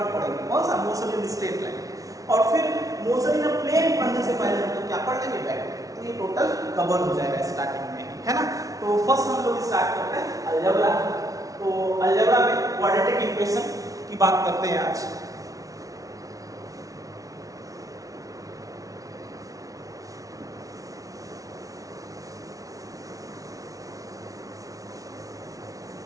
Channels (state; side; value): late; left; 0.17 ms